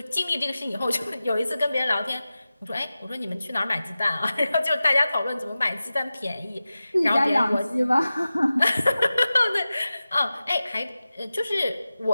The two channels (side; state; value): both; inverted; correlation -0.95